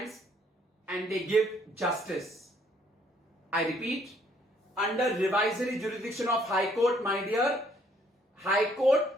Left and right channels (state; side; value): normal; both; correlation 0.65